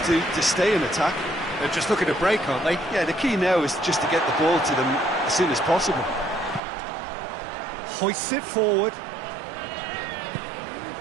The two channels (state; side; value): drops out; left; at 6.6 s